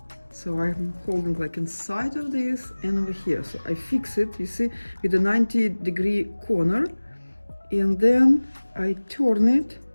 So I'm holding like inside of this and over here. So I fix it, you see, with a 90-degree corner, and then I turn it to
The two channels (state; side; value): inverted; both; correlation -1.00